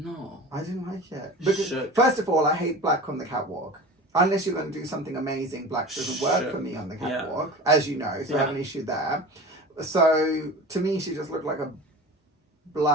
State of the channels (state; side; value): normal; both; correlation 0.35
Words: not? I didn't like it. Because, first of all, I hate black on the catwalk. Unless you're going to do something amazing, black doesn't work for me on the catwalk, as you know, so I have an issue there. So, to me, she just looked like a